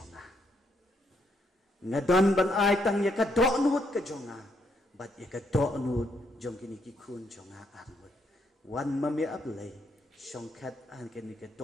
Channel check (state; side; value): normal; both; correlation 0.75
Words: ngadon ban ai tang ya ka do nut ka jonga bat ya ka do nut jong kini ki kun jonga armut wan mami ablay songkat an kini ka